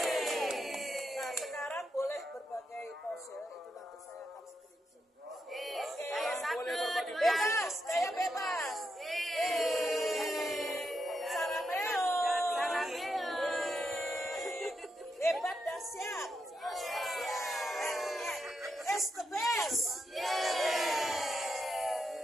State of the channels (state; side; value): normal; both; correlation 0.83